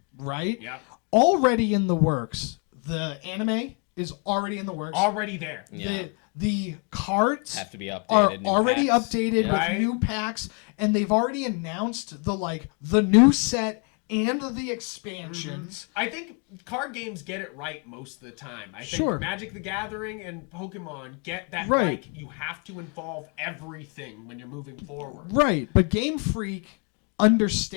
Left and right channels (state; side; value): quieter; right; 36.3 dB